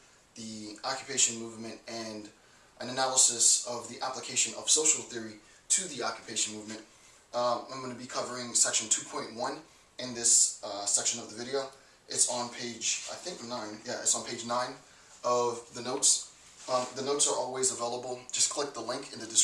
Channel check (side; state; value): both; identical; correlation 1.00